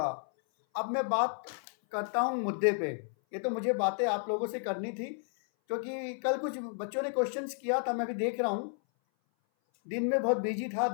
अब मैं बात करता हूँ मुद्दे पे। ये तो मुझे बातें आप लोगों से करनी थी क्योंकि कल कुछ बच्चों ने क्वेश्चंस किया था, मैं भी देख रहा हूँ। दिन में बहुत बिजी था,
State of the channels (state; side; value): silent; right; 56 dB below the other